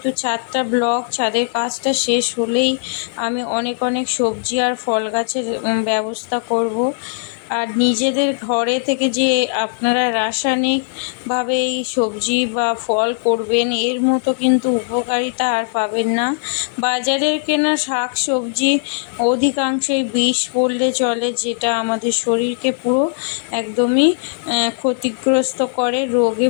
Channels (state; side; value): silent; right; digital silence